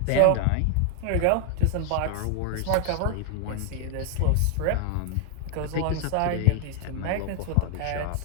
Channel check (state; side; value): different; both; correlation 0.00